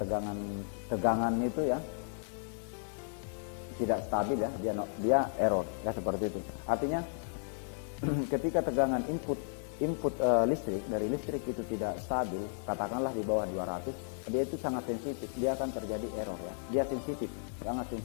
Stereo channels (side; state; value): right; silent; digital silence